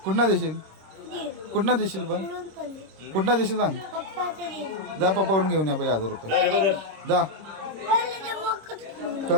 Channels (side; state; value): left; late; 26 ms